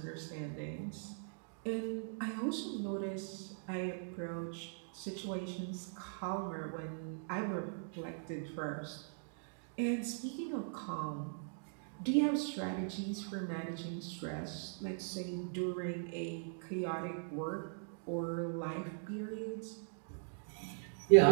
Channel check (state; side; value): silent; left; digital silence